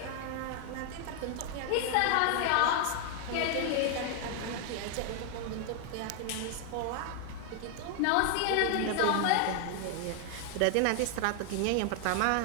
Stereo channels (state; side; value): different; both; correlation 0.00